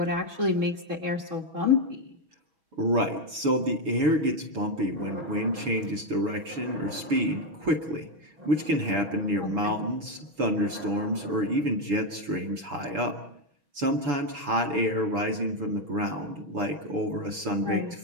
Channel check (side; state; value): left; late; 6.2 ms